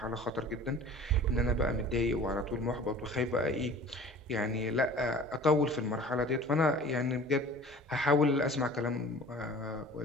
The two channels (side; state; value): both; normal; correlation 0.44